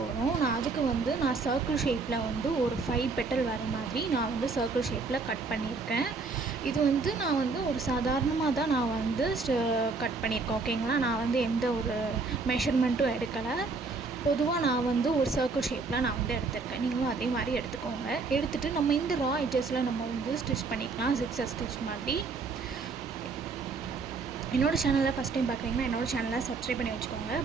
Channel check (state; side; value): quieter; left; 4.2 dB